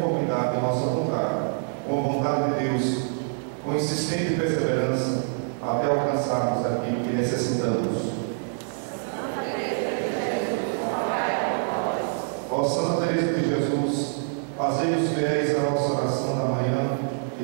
à nossa vontade, com a vontade de Deus, com insistente perseverança, até alcançarmos aquilo que necessitamos. Ó Santa Teresa de Jesus, fazei-nos fiéis à nossa oração da manhã e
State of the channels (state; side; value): silent; left; 57 dB below the other